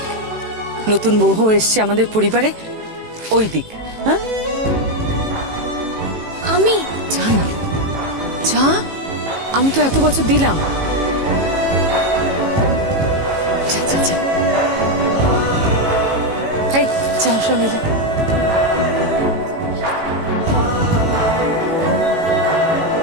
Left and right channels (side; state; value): left; late; 18 ms